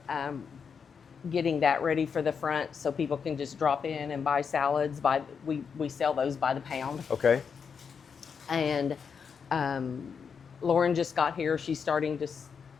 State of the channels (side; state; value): right; quieter; 6.3 dB